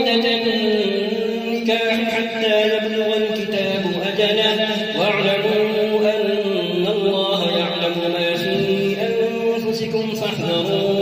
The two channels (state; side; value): identical; both; correlation 1.00